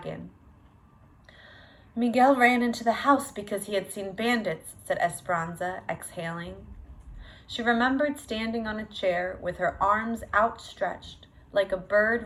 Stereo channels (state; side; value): identical; both; correlation 1.00